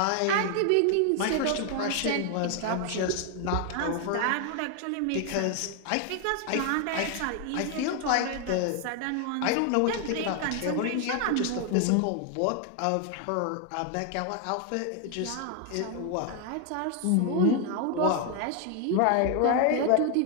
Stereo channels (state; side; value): different; both; correlation 0.00